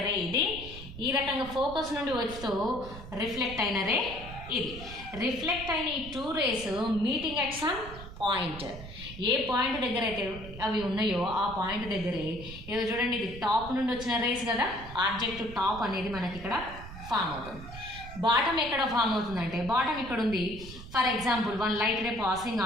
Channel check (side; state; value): right; noise; rumble, 13 dB below the sound